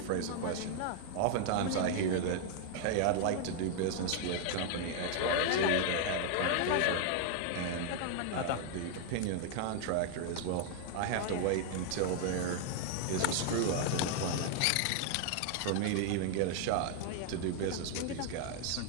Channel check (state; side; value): different; both; correlation 0.00